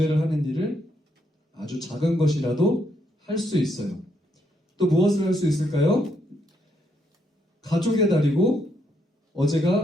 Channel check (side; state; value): both; normal; correlation 0.75